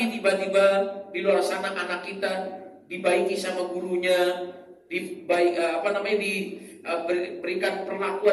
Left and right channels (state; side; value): identical; both; correlation 1.00